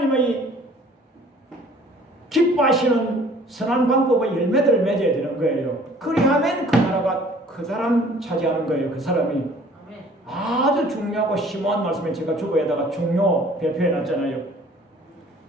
기뻐하시는 선한 방법의 열매들을 맺어야 되는 거예요. 그리하면 그 나라가 그 사람 차지하는 거예요. 그 사람이. 아주 중요하고 심오한 말씀을 제가 주보에다가 중요 배표해 놨잖아요.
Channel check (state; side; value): normal; both; correlation 0.53